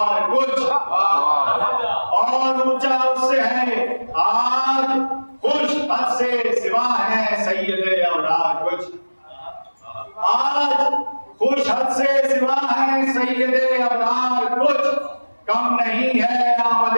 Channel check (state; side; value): inverted; both; correlation -1.00